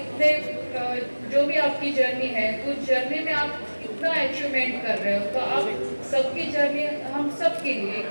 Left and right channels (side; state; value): both; inverted; correlation -1.00